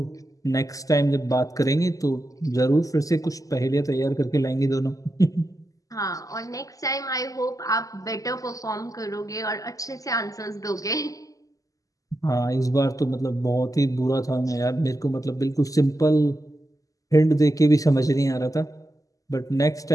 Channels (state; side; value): late; right; 0.17 ms